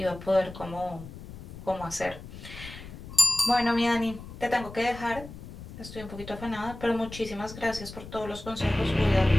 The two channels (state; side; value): noise; left; rumble, 13 dB below the sound